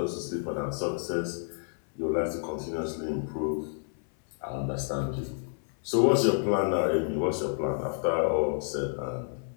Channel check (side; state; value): right; silent; 58 dB below the other